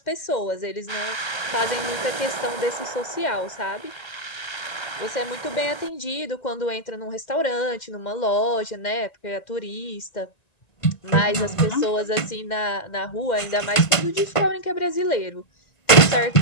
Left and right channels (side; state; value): right; late; 1.9 ms